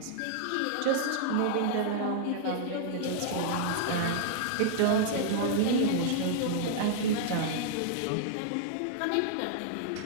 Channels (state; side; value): different; both; correlation -0.01